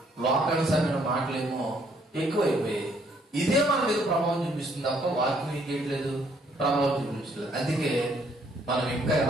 లోకానుసారమైన మాటలేమో ఎక్కువైపోయాయి. ఇదే మన మీద ప్రభావం చూపిస్తుంది తప్ప వాక్యం ఏం చేయట్లేదు, ప్రభావం చూపించలేదు. అందుకే మనం ఇంకా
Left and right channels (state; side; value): normal; both; correlation 0.66